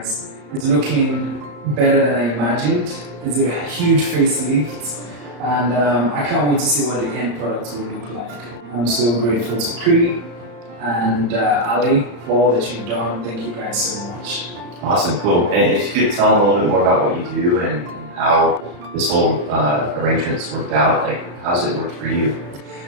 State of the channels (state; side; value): late; left; 35 ms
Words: It's looking better than I imagined. It's a huge facelift, and I can't wait to see what the end product will look like. I'm so grateful to Cree and Ali for all that you've done. Thank you guys so much. Awesome, cool. And if you could tell them a little bit more about what you do and how this whole arrangement's worked out, like how's it worked for you?